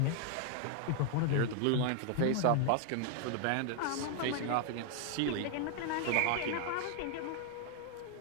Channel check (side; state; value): both; different; correlation 0.00